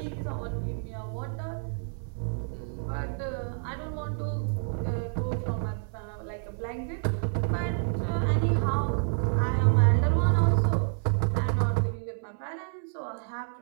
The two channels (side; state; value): left; silent; 59 dB below the other